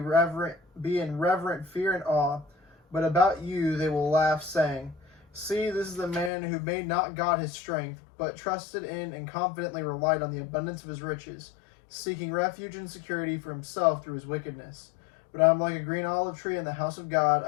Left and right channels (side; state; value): right; drops out; at 6.3 s